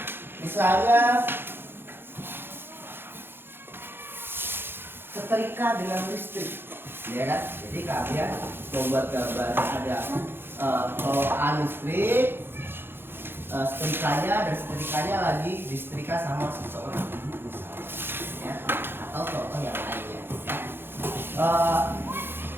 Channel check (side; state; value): left; late; 0.10 ms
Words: misalnya setrika dengan listrik, ya kan? Jadi kalian membuat gambar ada colokan listrik, setrikanya, dan setrikanya lagi disetrika sama seseorang, misalnya, ya, atau contoh yang lainnya, ya.